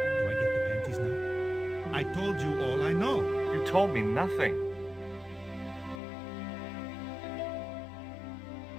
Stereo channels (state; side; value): drops out; right; at 6.0 s